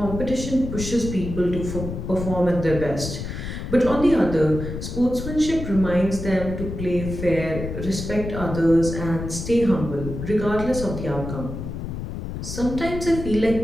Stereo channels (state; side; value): noise; left; rumble, 7 dB below the sound